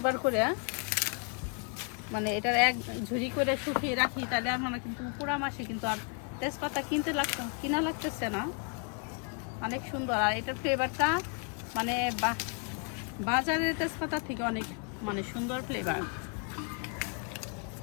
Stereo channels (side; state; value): right; quieter; 37.7 dB